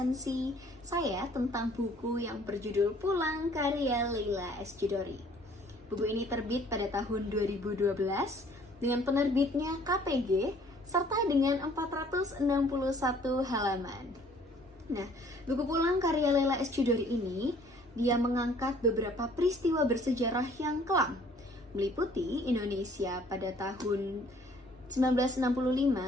saya tentang buku yang berjudul Pulang karya Leila S. Chudori. Buku ini terbit pada tahun 2012 dengan penerbitnya KPG serta dengan 461 halaman. Nah, buku Pulang karya Leila S. Chudori ini dia mengangkat beberapa peristiwa bersejarah yang kelam, meliputi Indonesia pada tahun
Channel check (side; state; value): both; normal; correlation 0.57